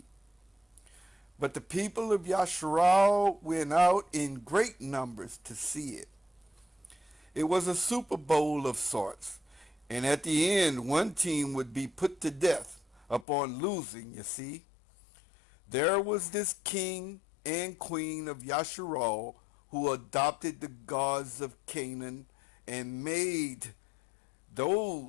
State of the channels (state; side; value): drops out; right; at 13.2 s